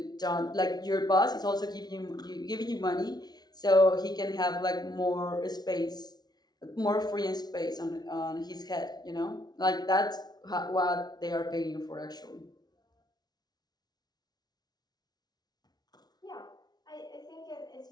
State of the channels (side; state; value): right; late; 0.19 ms